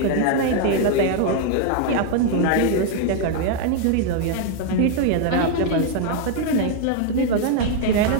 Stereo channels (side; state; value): both; different; correlation 0.00